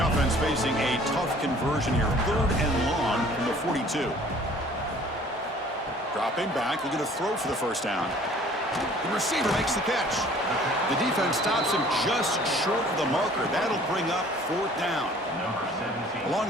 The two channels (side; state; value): both; normal; correlation 0.52